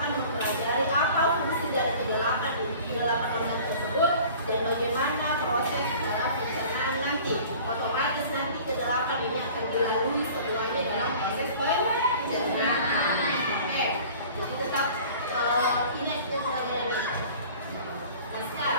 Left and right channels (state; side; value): inverted; both; correlation -0.46